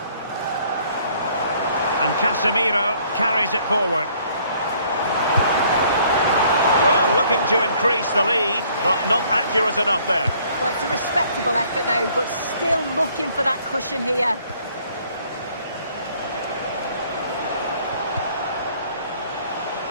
And Casemiro carries it forward. Well, looking to increase the lead, but not accurate enough there. Well, it's a respectable effort, though, but still looking for that cushion here.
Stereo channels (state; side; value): inverted; both; correlation -0.61